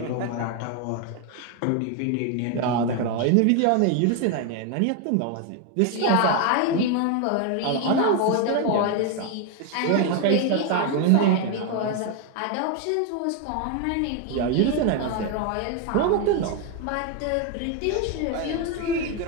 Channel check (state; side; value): different; both; correlation 0.01